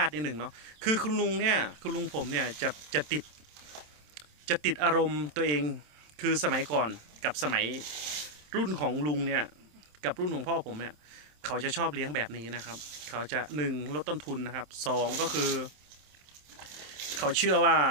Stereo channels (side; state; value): left; late; 27 ms